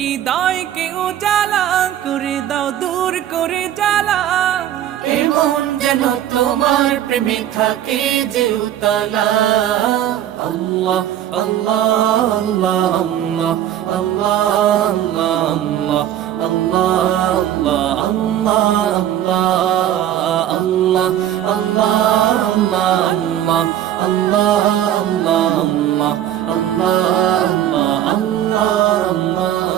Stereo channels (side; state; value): left; quieter; 11.4 dB